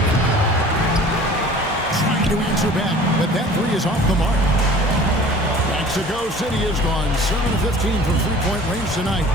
Trying to answer back, but that 3 is off the mark. Mexico City has gone 7 of 15 from three-point range tonight.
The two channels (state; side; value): normal; both; correlation 0.46